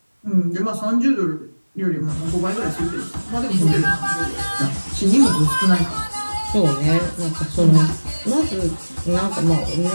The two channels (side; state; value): both; inverted; correlation -1.00